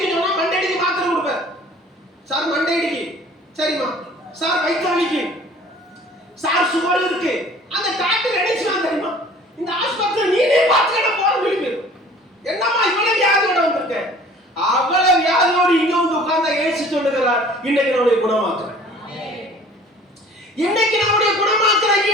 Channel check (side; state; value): both; normal; correlation 0.49